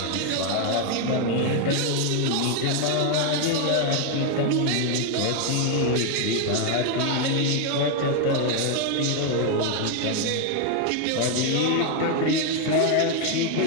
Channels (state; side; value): different; both; correlation 0.01